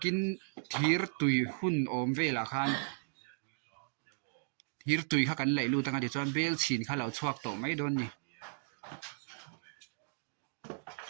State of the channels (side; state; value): left; silent; digital silence